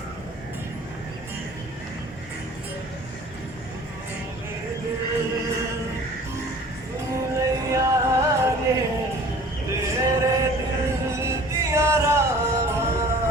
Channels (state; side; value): normal; both; correlation 0.47